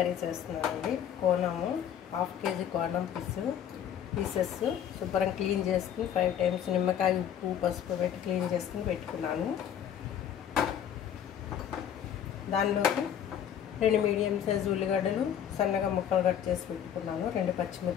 చేస్తున్నానండి. కోనము 1/2 kg కోనం పీసెస్ శుభ్రం క్లీన్ చేసుకుని 5 times నిమ్మకాయ ఉప్పు పసుపు పెట్టి క్లీన్ చేసుకుని పెట్టుకున్నాను. దానిలోకి 2 మీడియం సైజు ఉల్లిగడ్డలు సన్నగా ముక్కలు కట్ చేసి పెట్టుకున్నాను. 2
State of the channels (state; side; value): quieter; right; 9.4 dB